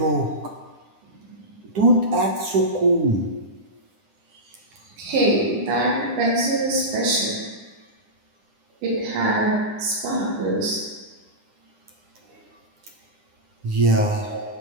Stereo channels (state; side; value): late; left; 9.9 ms